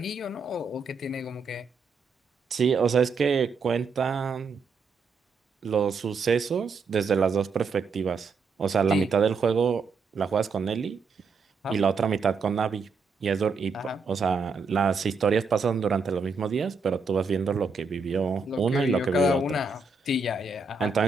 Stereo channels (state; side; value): quieter; left; 4.5 dB